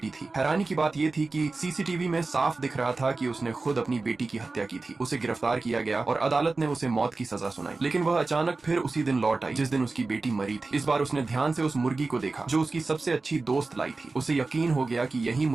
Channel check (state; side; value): quieter; left; 3.6 dB